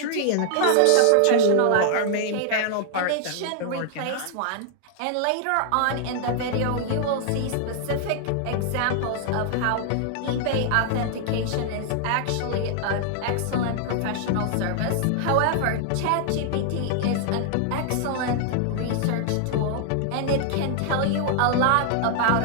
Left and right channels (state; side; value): different; both; correlation 0.00